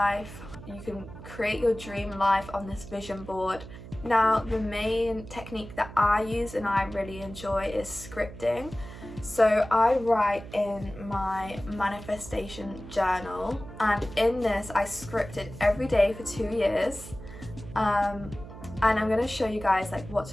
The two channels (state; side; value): noise; right; hum, 14 dB below the sound